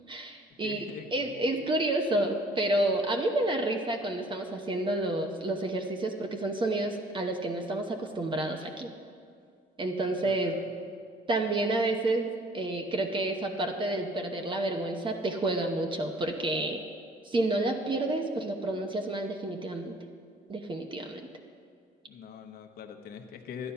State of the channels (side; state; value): both; normal; correlation 0.55